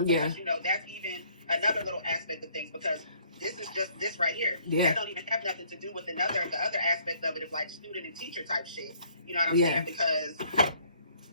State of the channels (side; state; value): both; inverted; correlation -0.62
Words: Because, that's even another little aspect of things, because this is just this right here. Yeah. That don't even have nothing to do with the other aspect of it, of like student and teacher type shit. You know what I'm saying? Because